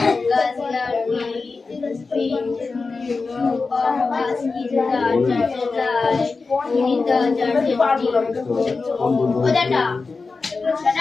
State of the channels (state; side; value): quieter; right; 4.2 dB